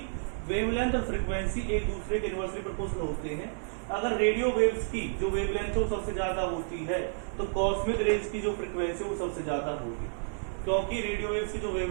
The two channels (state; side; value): silent; left; 57 dB below the other